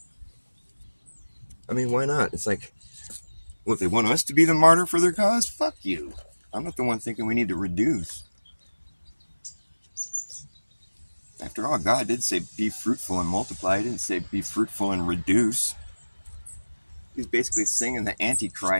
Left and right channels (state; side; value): inverted; both; correlation -1.00